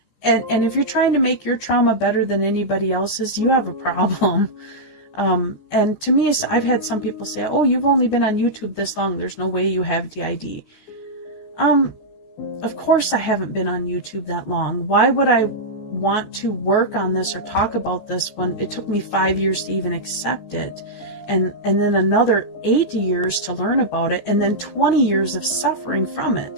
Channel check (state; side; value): late; right; 14 ms